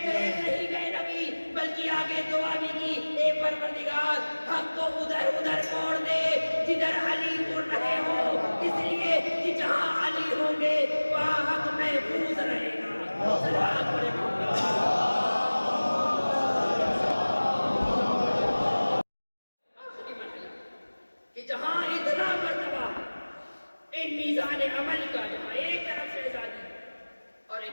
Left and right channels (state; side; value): inverted; both; correlation -1.00